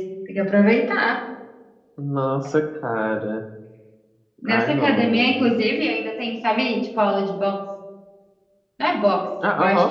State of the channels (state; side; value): identical; both; correlation 1.00